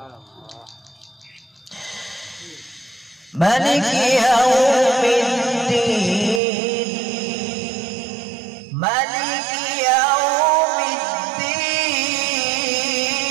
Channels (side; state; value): left; drops out; at 6.4 s